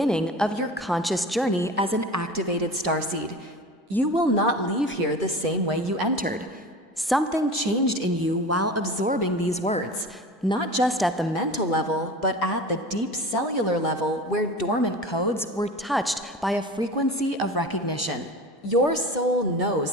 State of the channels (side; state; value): both; normal; correlation 0.35